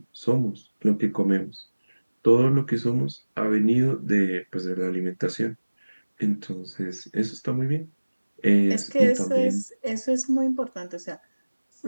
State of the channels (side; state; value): both; inverted; correlation -1.00